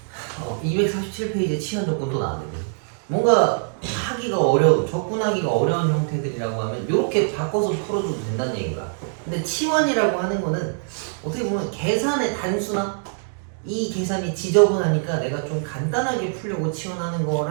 247페이지에 치환 조건 또 나왔는데 뭔가 하기가 어려운, 접근하기가 어려운 형태들이라고 하면 이렇게 바꿔서 풀어줘도 된다는 얘기가. 근데 치환이라고 하는 거는 어떻게 보면 계산의 단수나 이 계산이 지저분하니까 내가 좀 간단하게 풀려고 치환하는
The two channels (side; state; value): left; silent; 63 dB below the other